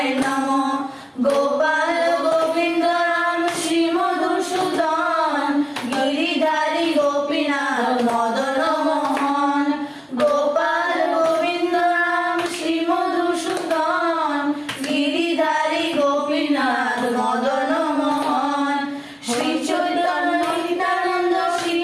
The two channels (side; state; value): both; identical; correlation 1.00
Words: নমো। গোপাল গোবিন্দ রাম শ্রী মধুসূদন, গিরিধারী গোপীনাথ মদন মোহন। গোপাল গোবিন্দ রাম শ্রী মধুসূদন, গিরিধারী গোপীনাথ মদন মোহন। শ্রী চৈতন্য নিত্যানন্দ শ্রী